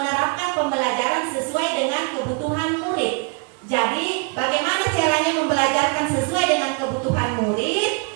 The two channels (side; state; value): left; quieter; 33.5 dB